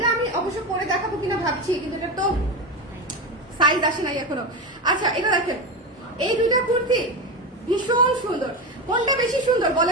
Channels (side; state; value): both; normal; correlation 0.18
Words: আমি অবশ্য পরে দেখাবো কিনা ভাবছি, কিন্তু এটা তো সাইজ আসে নাই এখনো। আচ্ছা, এটা দেখেন, এই দুইটা কুর্তি ভীষণ সুন্দর। কোনটা বেশি সুন্দর